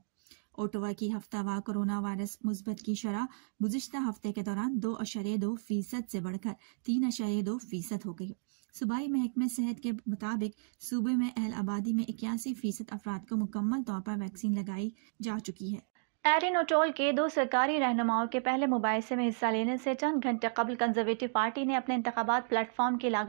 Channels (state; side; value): silent; left; digital silence